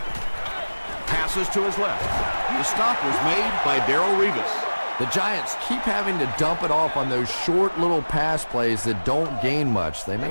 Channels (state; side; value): inverted; both; correlation -1.00